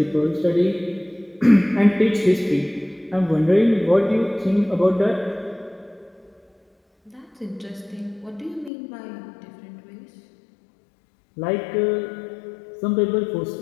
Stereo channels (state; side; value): drops out; right; at 8.7 s